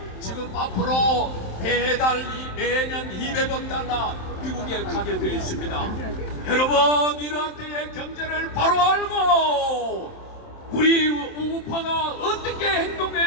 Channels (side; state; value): right; late; 27 ms